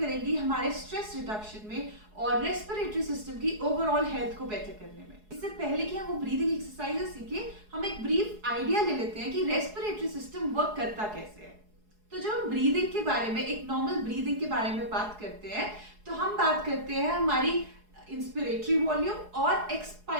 हमारे स्ट्रेस रिडक्शन में और रेस्पिरेटरी सिस्टम की ओवरऑल हेल्थ को बेटर करने में। इससे पहले कि हम वो ब्रीदिंग एक्सरसाइजेस सीखें, हम एक ब्रीफ आइडिया ले लेते हैं कि रेस्पिरेटरी सिस्टम वर्क करता कैसे है। तो जब हम ब्रीदिंग के बारे में, एक नॉर्मल ब्रीदिंग के बारे में बात करते हैं, तो हम बात करते हैं हमारी इंस्पिरेटरी वॉल्यूम और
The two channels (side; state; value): left; late; 4.7 ms